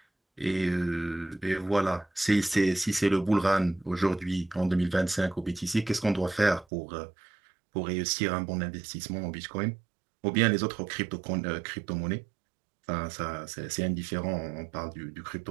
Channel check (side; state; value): left; drops out; at 6.7 s